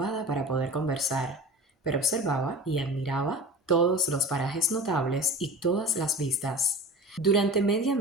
para poder conversar, pero observaba y admiraba todos los parajes notables y todas las vistas. Durante media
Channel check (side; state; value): both; normal; correlation 0.34